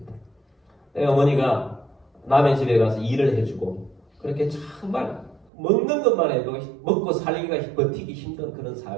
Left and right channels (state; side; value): drops out; left; at 5.5 s